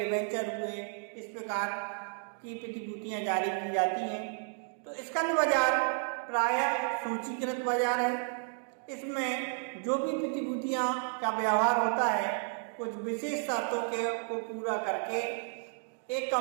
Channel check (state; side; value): silent; left; 56 dB below the other